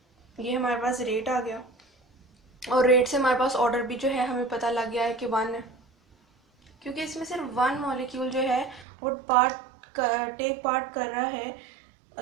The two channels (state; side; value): drops out; left; at 8.8 s